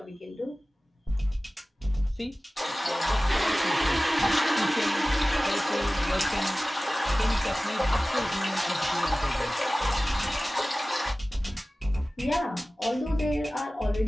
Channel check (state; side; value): normal; both; correlation 0.97